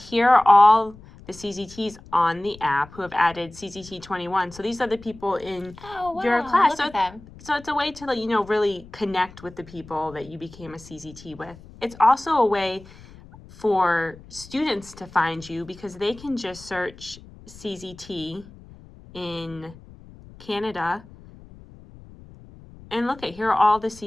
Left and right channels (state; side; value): noise; left; rumble, 20 dB below the sound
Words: are all the CZTs on the app who have added CZT21. So these are the people in your class. Look at them. So it's a way to really connect with the people that you became a CZT with. It's also a way for students to find you because they can just search CZT in Canada and look at here are all the